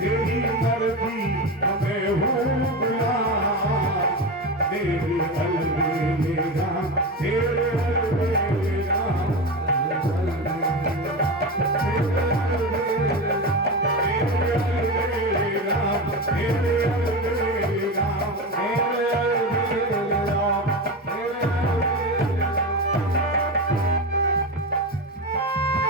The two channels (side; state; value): both; normal; correlation 0.20